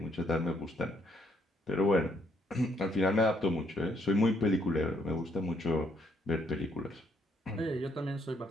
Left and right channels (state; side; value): normal; both; correlation 0.70